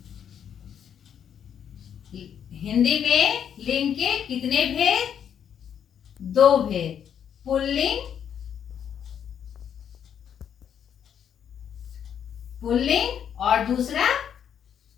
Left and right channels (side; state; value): right; quieter; 8.6 dB